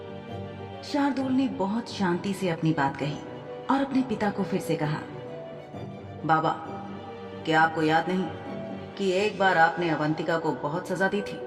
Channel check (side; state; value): both; identical; correlation 1.00